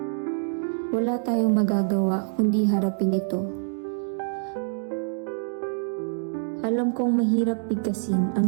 Wala tayong magagawa kundi harapin ito. Alam kong mahirap bigkasin ang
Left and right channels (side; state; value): left; silent; digital silence